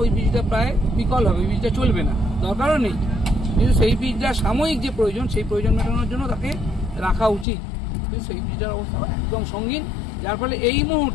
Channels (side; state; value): right; drops out; at 7.5 s